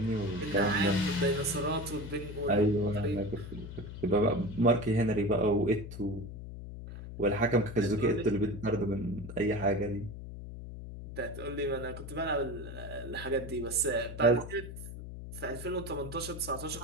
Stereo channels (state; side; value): noise; left; hum, 10 dB below the sound